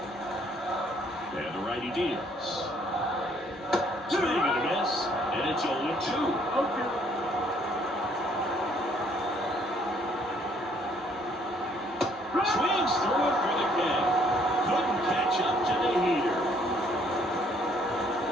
And the righty deals. Swing and a miss, and it's 0-2. Swings through it for the K. Couldn't catch up to the heater.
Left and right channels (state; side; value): normal; both; correlation 0.64